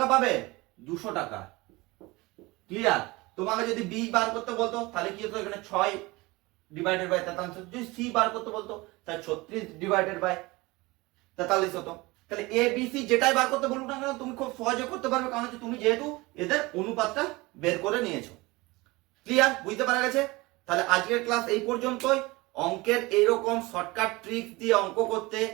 পাবে, 200 টাকা। ক্লিয়ার? তোমাকে যদি বি বার করতে বলতো তাহলে কি হতো, এখানে 6 ডিভাইডেড বাই 43, যদি সি বার করতে বলতো তাহলে 36 ডিভাইডেড বাই 43 হতো। তাহলে এ বি সি যেটাই বার করতে বলুক না কেন তুমি খুব সহজে করতে পারবে, কারণ হচ্ছে তুমি যেহেতু এদের অনুপাতটা বের করে নিয়েছো। ক্লিয়ার? বুঝতে পারা গেছে? তাহলে আজকের ক্লাস এই পর্যন্তই। অঙ্কের এইরকম শর্টকাট ট্রিক্স দিয়ে অঙ্ক করতে,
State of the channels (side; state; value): left; quieter; 22.4 dB